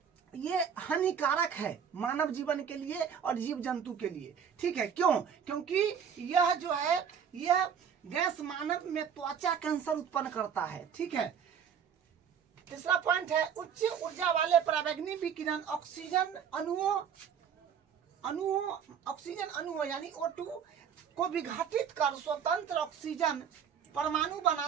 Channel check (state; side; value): quieter; left; 7.7 dB